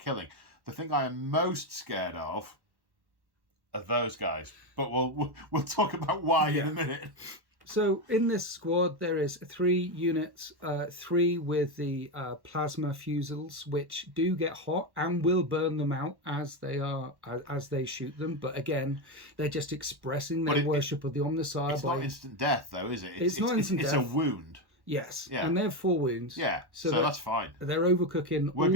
The thing I am most scared of are those guys, but we'll talk about why in a minute. So in this squad, there is 3 units, 3 with the plasma fusils, which do get hot and will burn them out as they shoot them. But again, they're just expressing their worship of the Omnissiah. It's not instant death, though, is it? It's not instant death. It's a wound. Yes, and they have 4 wounds. Yeah, so that's fine. They're overcooking all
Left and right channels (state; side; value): late; left; 1.1 ms